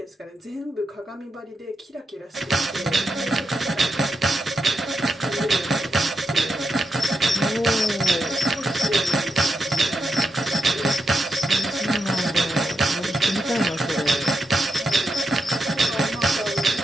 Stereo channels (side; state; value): both; normal; correlation 0.85